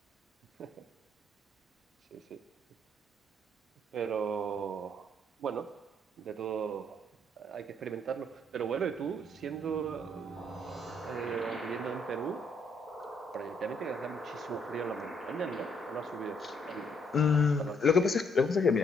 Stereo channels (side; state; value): both; normal; correlation 0.70